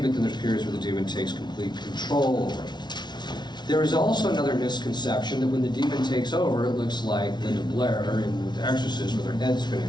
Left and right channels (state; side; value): late; right; 0.20 ms